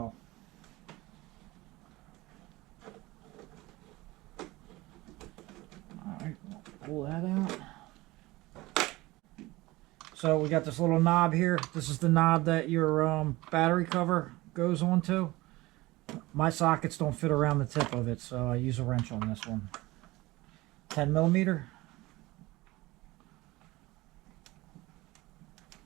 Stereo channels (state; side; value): quieter; left; 20.1 dB